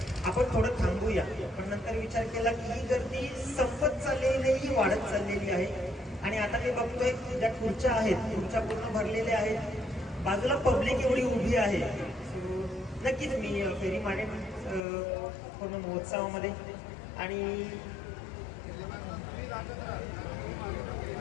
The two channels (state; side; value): drops out; right; at 14.8 s